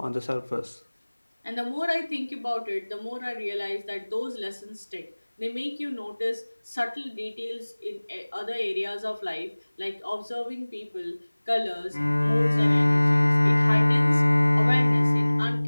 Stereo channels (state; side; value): inverted; both; correlation -1.00